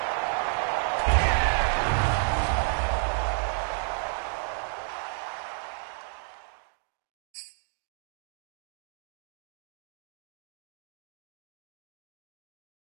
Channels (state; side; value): silent; left; digital silence